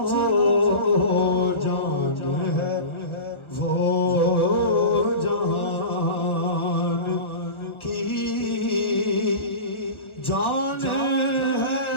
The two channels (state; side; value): late; right; 1.4 ms